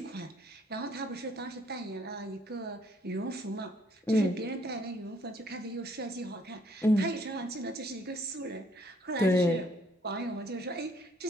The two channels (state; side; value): normal; both; correlation 0.65